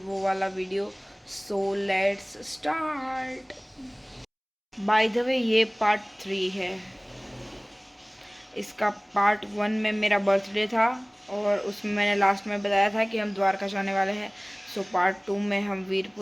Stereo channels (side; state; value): both; identical; correlation 1.00